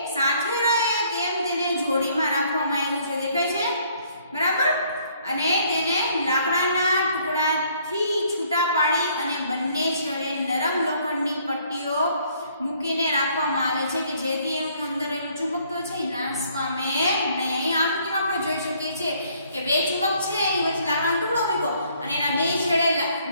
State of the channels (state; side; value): inverted; both; correlation -0.63